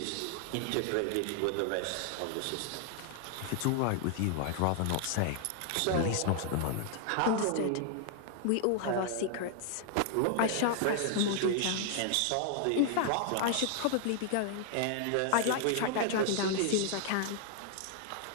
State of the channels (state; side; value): different; both; correlation 0.00